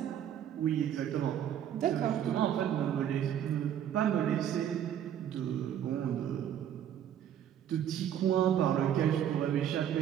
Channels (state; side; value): quieter; left; 10.0 dB